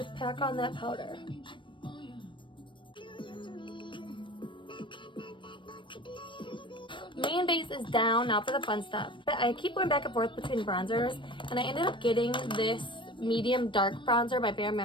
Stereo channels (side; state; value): right; late; 0.24 ms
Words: pack on that powder. Main base is down. Now for the fun stuff. But I keep going back and forth between bronzers, and I ended up getting this medium dark bronzer by Bare